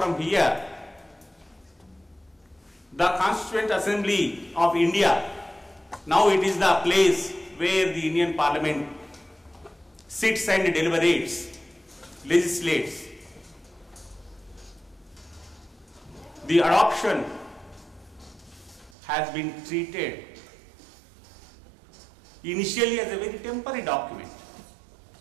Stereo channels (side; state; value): left; drops out; at 18.9 s